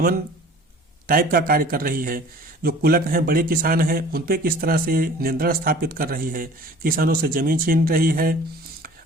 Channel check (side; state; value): both; normal; correlation 0.47